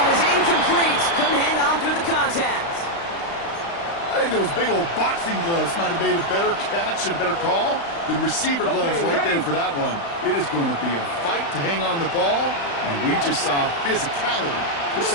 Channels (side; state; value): right; late; 35 ms